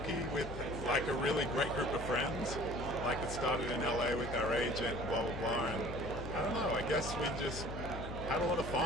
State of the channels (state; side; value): noise; left; hum, 8 dB below the sound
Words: with like a really great group of friends. Like it started in LA with our agent, blah blah blah, and I don't know, I guess we just had a lot of